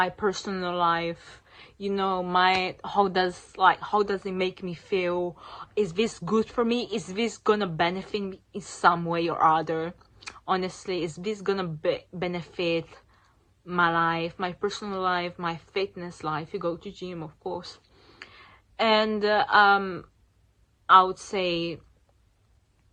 personal life, you know, how does it make me feel? Is this good for me? Is this gonna benefit me in some way or other? Honestly, is this gonna benefit my life, my personal life, my fitness life? You go to gym, of course. And I would say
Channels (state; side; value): identical; both; correlation 1.00